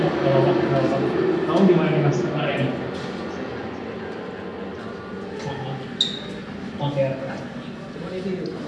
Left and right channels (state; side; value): identical; both; correlation 1.00